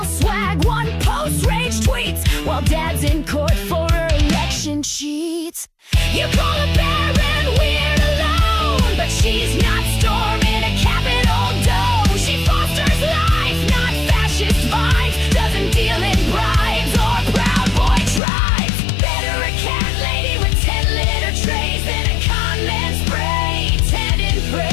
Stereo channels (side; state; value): right; drops out; at 18.2 s